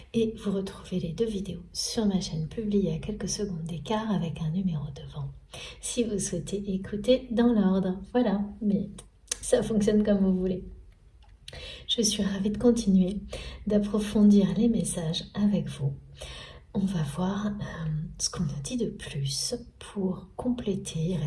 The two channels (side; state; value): both; identical; correlation 1.00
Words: Et vous retrouvez les deux vidéos sur ma chaîne publiées à quelques secondes d'écart avec un numéro devant. Si vous souhaitez écouter dans l'ordre, voilà, mais ça fonctionne comme vous voulez. Je suis ravie de continuer, d'approfondir les messages avec vous. On va voir ce qu'on nous dit de plus pour compléter. Il